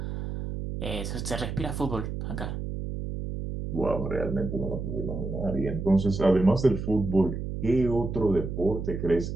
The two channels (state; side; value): noise; right; hum, 5 dB below the sound